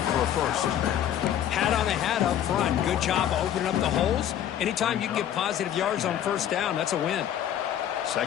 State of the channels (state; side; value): quieter; right; 10.5 dB